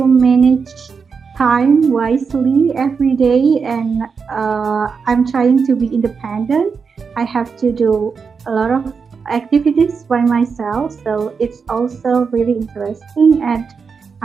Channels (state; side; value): quieter; left; 5.5 dB